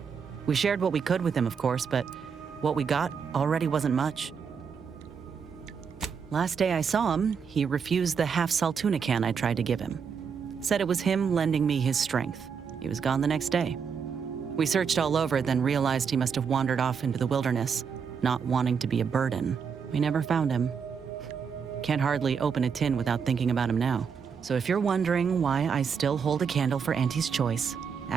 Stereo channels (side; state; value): left; quieter; 6.4 dB